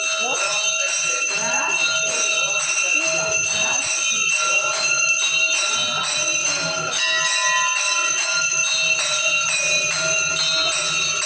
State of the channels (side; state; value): both; identical; correlation 1.00